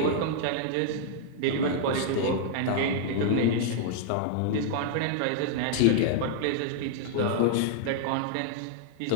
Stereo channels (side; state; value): both; different; correlation -0.01